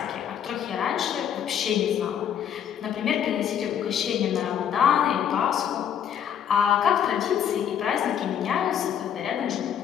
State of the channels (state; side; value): quieter; right; 9.1 dB